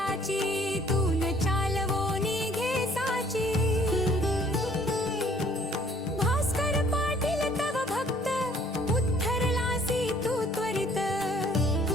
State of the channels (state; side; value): normal; both; correlation 0.59